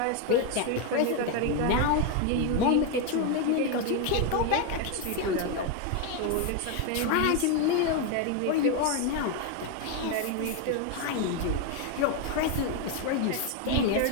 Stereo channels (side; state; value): both; different; correlation 0.01